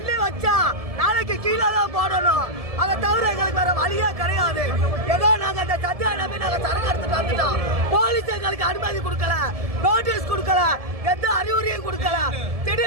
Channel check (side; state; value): left; late; 1.7 ms